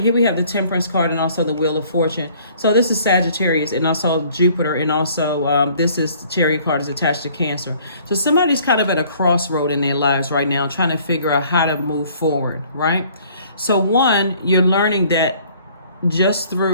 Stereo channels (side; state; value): both; inverted; correlation -0.57